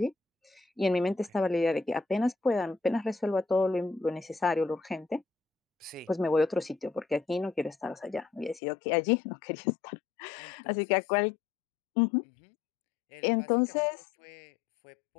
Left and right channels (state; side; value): drops out; right; at 8.6 s